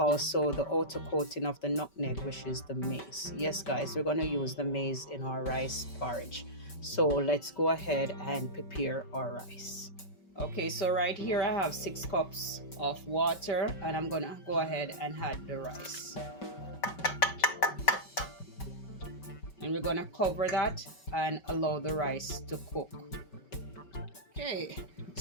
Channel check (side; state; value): right; late; 5.2 ms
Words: the outer coating of the nutmeg, which is the maize. Yes guys, we're going to use the maize in our rice porridge. So let's go ahead and prepare our rice. Okay, so right here I have 6 cups of water, and I'm gonna go ahead and add the rice. And we're gonna cover that and allow the rice to cook. Okay,